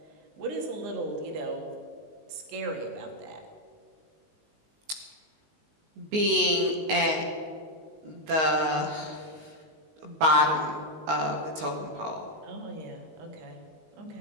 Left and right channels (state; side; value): late; left; 19 ms